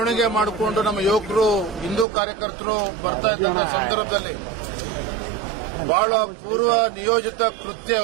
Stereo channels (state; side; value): drops out; left; at 2.1 s